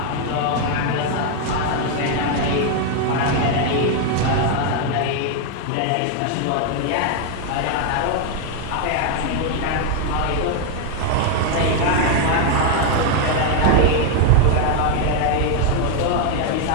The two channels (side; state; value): both; different; correlation 0.01